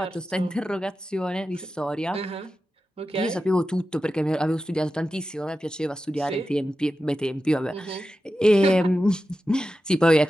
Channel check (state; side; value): normal; both; correlation 0.92